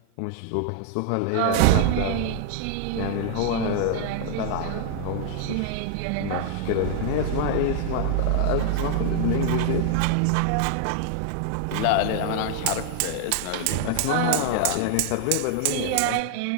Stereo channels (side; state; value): both; different; correlation -0.01